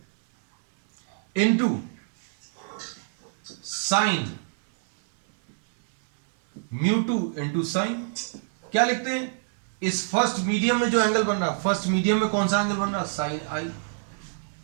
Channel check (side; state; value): left; silent; 61 dB below the other